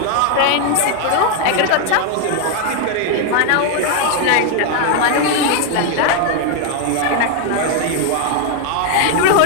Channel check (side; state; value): both; different; correlation 0.01